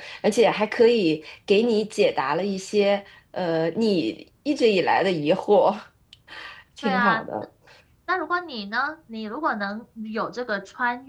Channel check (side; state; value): both; identical; correlation 1.00